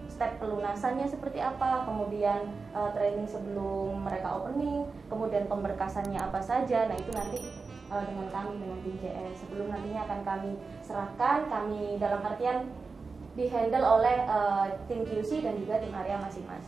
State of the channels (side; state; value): left; quieter; 4.4 dB